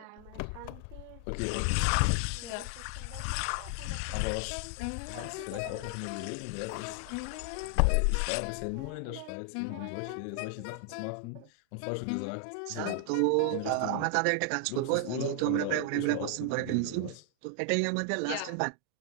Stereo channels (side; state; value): both; different; correlation 0.00